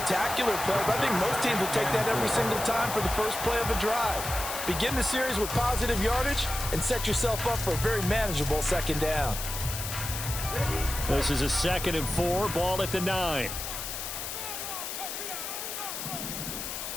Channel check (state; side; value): noise; left; hiss, 6 dB below the sound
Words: play, but I think most teams will take that every single time for the first play of a drive. Begin the series with positive yardage and set yourself up for a very manageable second down. This is a 2nd and 4, ball at the 9.